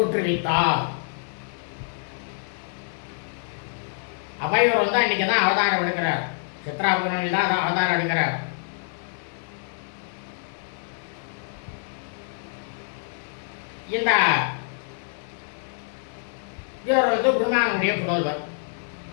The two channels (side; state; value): right; silent; 61 dB below the other